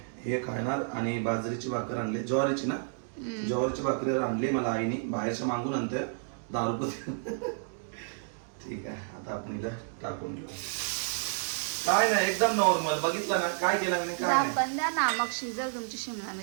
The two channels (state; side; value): silent; left; digital silence